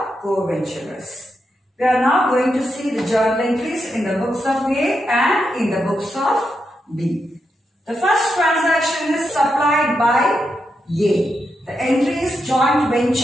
co-venturers. We are now going to see the journal entries in the books of A and in the books of B. The first transaction is supplied by A. The entry is joint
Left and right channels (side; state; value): both; normal; correlation 0.84